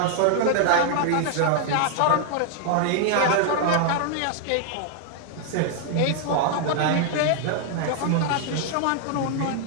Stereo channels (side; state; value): both; different; correlation 0.00